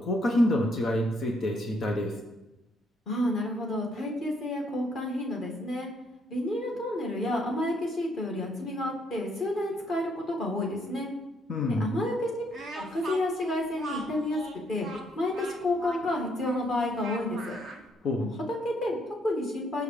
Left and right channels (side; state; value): both; normal; correlation 0.71